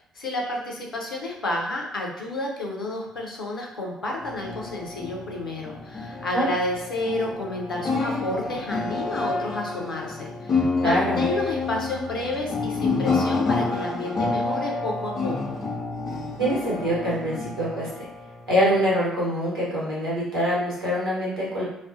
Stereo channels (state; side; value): normal; both; correlation 0.59